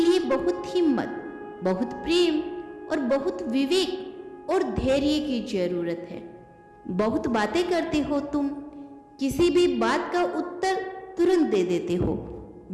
लिए बहुत हिम्मत, बहुत प्रेम और बहुत विवेक और धैर्य की जरूरत है। बहुत बातें करते हो तुम। किसी भी बात का उत्तर तुरंत दे देते हो।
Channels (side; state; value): both; identical; correlation 1.00